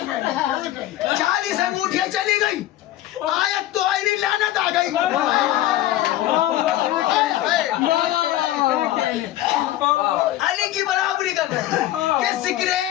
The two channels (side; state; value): right; quieter; 14.3 dB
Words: 40 انگوٹھیاں چلی گئی. آیت تو آئی نہیں, لعنت آ گئی. علی کی برابری کر رہے ہیں کہ ذکر